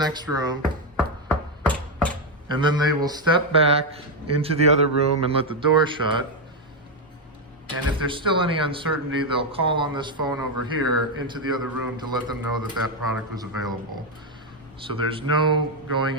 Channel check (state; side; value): normal; both; correlation 0.05